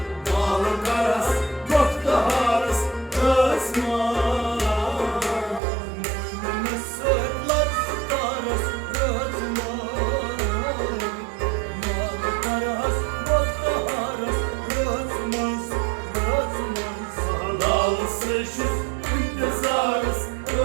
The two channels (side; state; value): left; drops out; at 5.6 s